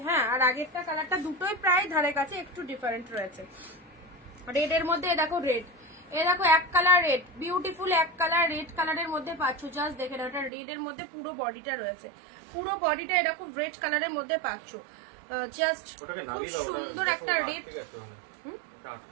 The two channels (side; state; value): left; drops out; at 10.5 s